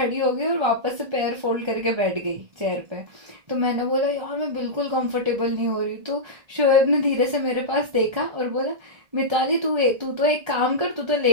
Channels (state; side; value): late; left; 1.7 ms